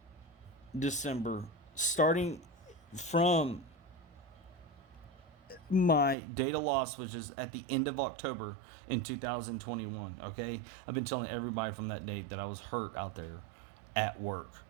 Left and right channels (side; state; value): left; drops out; at 6.2 s